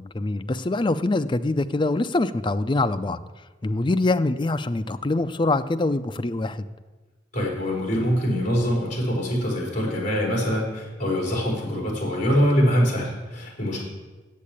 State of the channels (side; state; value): both; normal; correlation 0.72